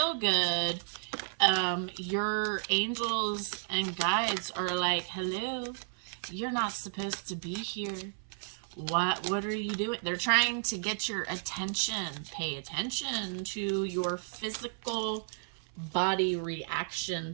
good, your angels and guides are like, hello, you're not supposed to be here. What are you doing? They're trying to get your attention. Pay attention to your physical body reaction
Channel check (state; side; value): silent; left; 56 dB below the other